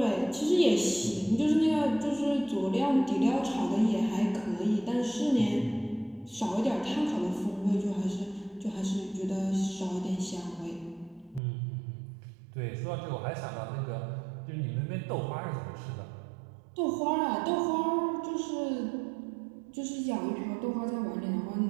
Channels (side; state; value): left; drops out; at 11.4 s